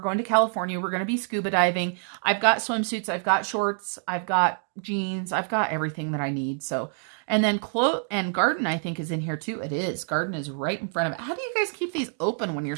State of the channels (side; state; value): left; silent; 56 dB below the other